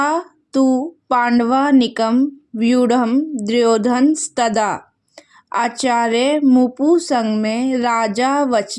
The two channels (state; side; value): identical; both; correlation 1.00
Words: तु पांडवानीकं व्यूढ़ं दुर्योधनस्तदा आचार्य मुपुसंगमे राजा